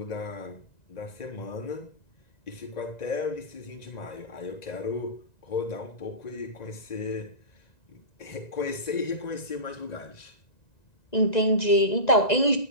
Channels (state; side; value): late; right; 1.9 ms